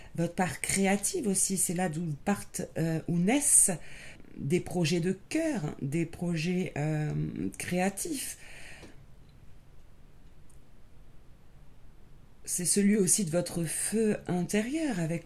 Votre part créative aussi, c'est là d'où partent, où naissent des projets de cœur, des projets créatifs. C'est celui aussi de votre feu intérieur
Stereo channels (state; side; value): identical; both; correlation 1.00